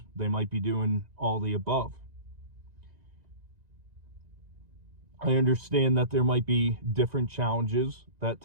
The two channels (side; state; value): left; late; 1.9 ms